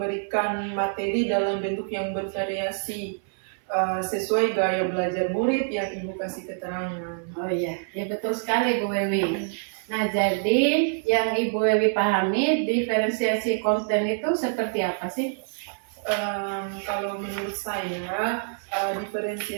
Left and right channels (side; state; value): left; silent; 61 dB below the other